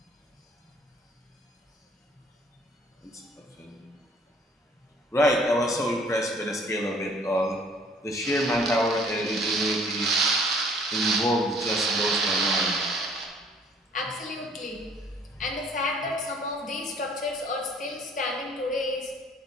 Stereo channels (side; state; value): both; normal; correlation 0.57